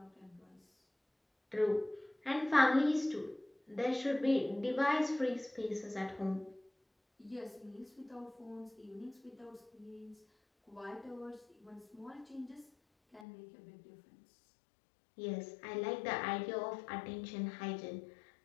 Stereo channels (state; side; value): drops out; right; at 13.2 s